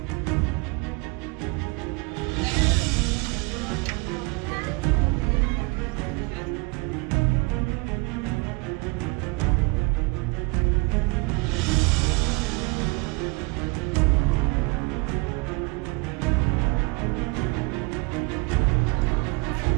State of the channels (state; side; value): quieter; left; 27.4 dB